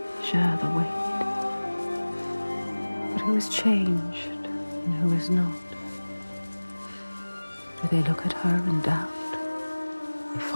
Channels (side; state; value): both; inverted; correlation -1.00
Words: share the weight. But who is changed and who is not? Do they look at her in doubt? They